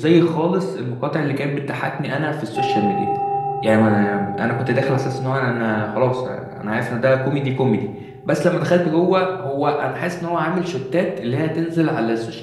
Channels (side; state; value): both; identical; correlation 1.00